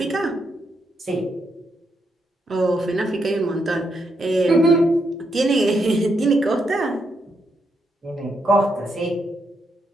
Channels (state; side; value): normal; both; correlation 0.80